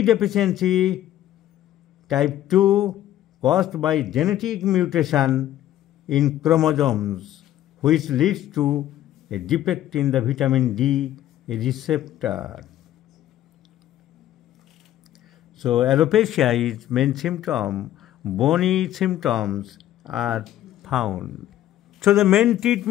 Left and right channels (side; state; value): right; quieter; 12.8 dB